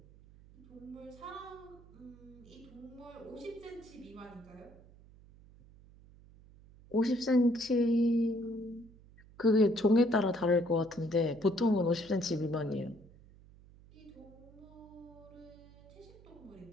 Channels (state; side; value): noise; right; hum, 23 dB below the sound